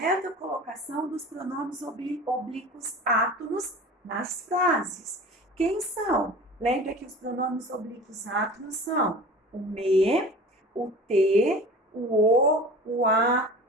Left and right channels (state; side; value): normal; both; correlation 0.39